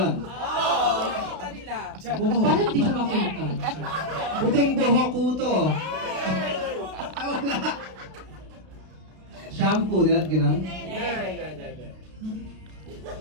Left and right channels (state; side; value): late; left; 32 ms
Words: Nakita nila. Diyan. Buhok. Parang hindi ko makita. Puting buhok ko to. Ay, wala. Shampoo nila, gano'n?